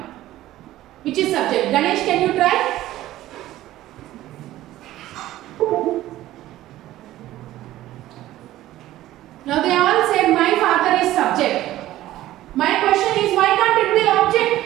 which is subject? Ganesh, can you try? Now they all said my father is subject. My question is, why can't it be object?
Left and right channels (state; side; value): quieter; left; 14.9 dB